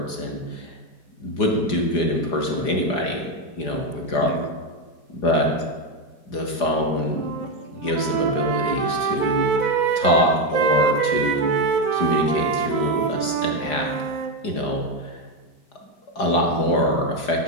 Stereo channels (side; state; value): right; late; 4.9 ms